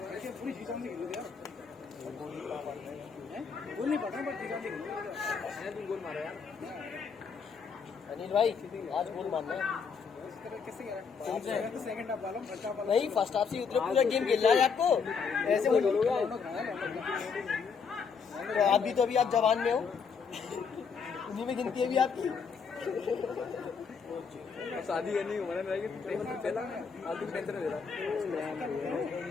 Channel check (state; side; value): quieter; right; 5.8 dB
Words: पूरी सीजन में खेलो यार गोल नहीं पड़ा बट सीजन में खेलो गोल मारा यार अनिल भाई आज गोल मारना है सेकंड हाफ वाला फर्स्ट हाफ वाला नहीं फर्स्ट हाफ से उतरे पूरा गेम खेल रहा है आपको ऐसे बोलोगे आप भी तो अभी आप जवान में हो उन्हीं में गिनती है भी आपकी शादी करनी उम्र में रहेगी पहला आज भी टेंशन दे रहा